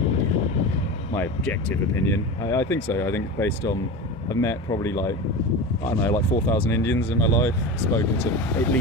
I think so. I think based on, I've met probably like 4,000 Indians in my life, spoken to at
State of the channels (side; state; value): both; normal; correlation 0.28